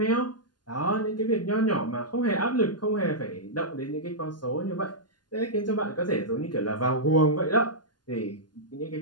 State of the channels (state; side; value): late; right; 0.70 ms